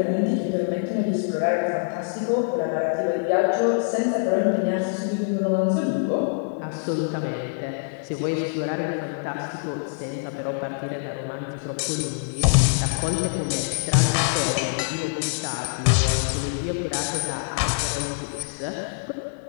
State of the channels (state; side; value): silent; right; 62 dB below the other